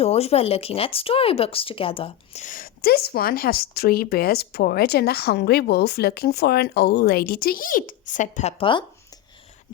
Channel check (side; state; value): right; quieter; 12.2 dB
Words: were looking at storybooks together. This one has 3 bears, porridge, and a hungry wolf looking for an old lady to eat, said Peppa.